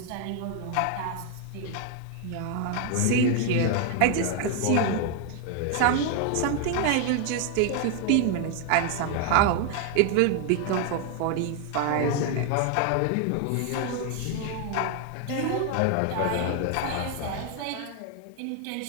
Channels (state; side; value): different; both; correlation 0.01